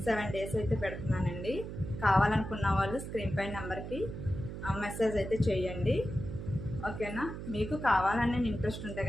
7 డేస్ అయితే పెడుతున్నానండి. కావాలనుకున్న వాళ్ళు స్క్రీన్ పై నెంబర్కి మెసేజ్ అయితే చేయండి. ఓకేనా? మీకు కావాలని ఇంట్రెస్ట్ ఉంటే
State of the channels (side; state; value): right; noise; hum, 8 dB below the sound